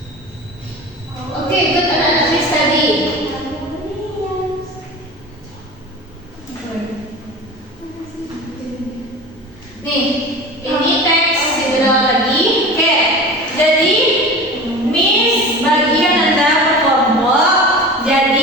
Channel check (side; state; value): both; normal; correlation 0.34